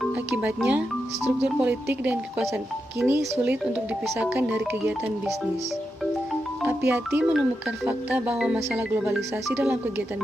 Akibatnya, struktur politik dan kekuasaan kini sulit untuk dipisahkan dari kegiatan bisnis. Apiati menemukan fakta bahwa masalah globalisasi dalam kegiatan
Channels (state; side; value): normal; both; correlation 0.87